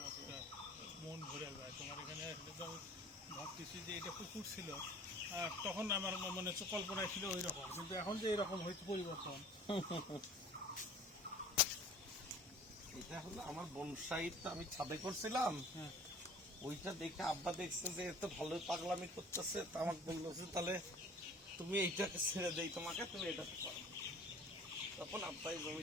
মন ভরে যায়। তোমার এখানে আসলে তো আমি ভাবতেছি যে এটা পুকুর ছিল, আর তখন আমার মনে হচ্ছে কল্পনায় ছিল ওই রকম, কিন্তু এখন যে এরকম হয়েছে পরিবর্তন। এটা হলো আমার বনসাই, তো আমি ছাদে করছিলাম, হ্যাঁ, ওইটা দেখে আব্বা দেখছে যে এত ভালোই পাগলামি করতেছে, তা আমাকে বললো যে তাহলে তুমি এইটাকে ছেড়ে দেই তোমাকে, তুমি এটাতে করো। তখন আব্বাই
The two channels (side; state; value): both; normal; correlation 0.47